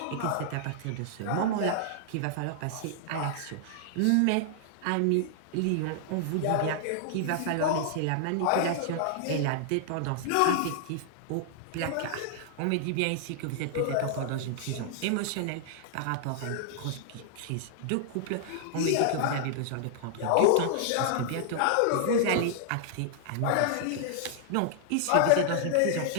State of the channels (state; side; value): different; both; correlation -0.01